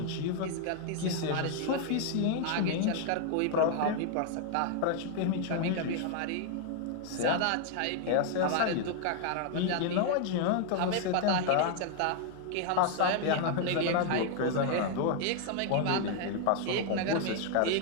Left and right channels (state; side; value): different; both; correlation 0.00